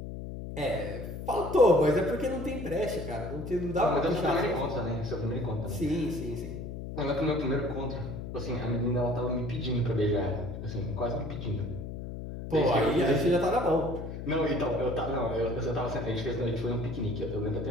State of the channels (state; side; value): noise; left; hum, 8 dB below the sound